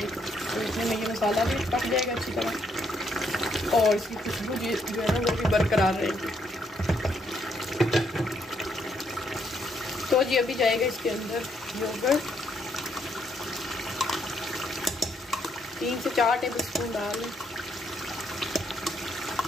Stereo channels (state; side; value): normal; both; correlation 0.73